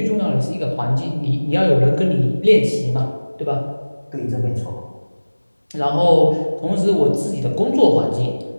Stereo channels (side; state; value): both; inverted; correlation -1.00